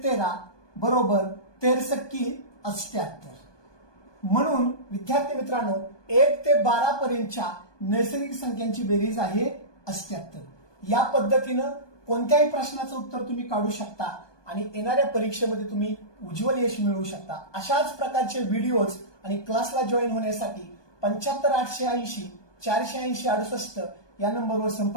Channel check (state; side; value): late; right; 1.2 ms